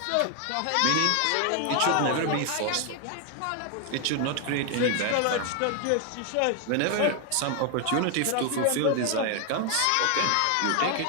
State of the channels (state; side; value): different; both; correlation 0.00